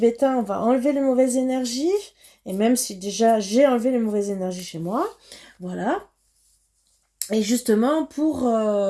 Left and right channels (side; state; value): both; identical; correlation 1.00